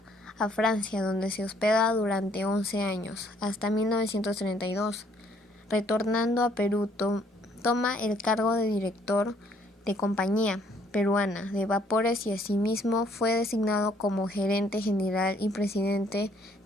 a Francia, donde se hospeda durante 11 años, hasta 1932. Retornando a Perú, toma el cargo de director de Compañía Peruana de Vapores y asimismo fue designado como gerente general y presidente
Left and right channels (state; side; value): normal; both; correlation 0.64